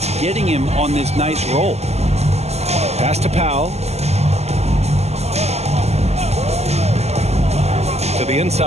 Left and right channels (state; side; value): late; left; 0.31 ms